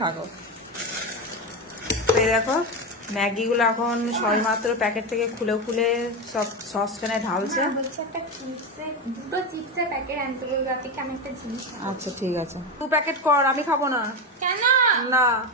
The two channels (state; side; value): normal; both; correlation 0.16